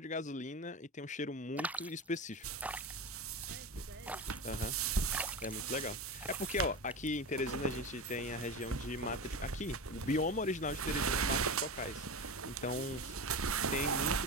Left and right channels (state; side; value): normal; both; correlation 0.25